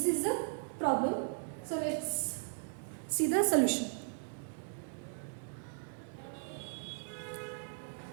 is the problem. So let's see the solution.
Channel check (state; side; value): silent; left; digital silence